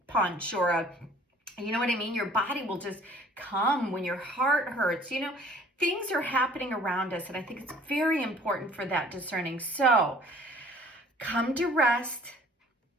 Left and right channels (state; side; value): normal; both; correlation 0.53